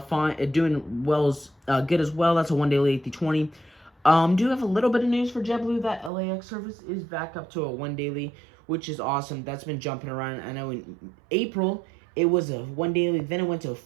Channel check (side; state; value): left; drops out; at 6.1 s